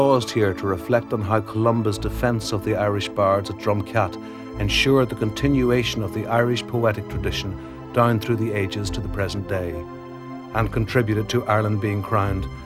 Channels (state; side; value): identical; both; correlation 1.00